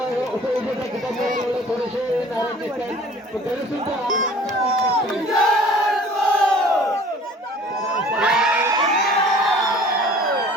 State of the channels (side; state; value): both; normal; correlation 0.49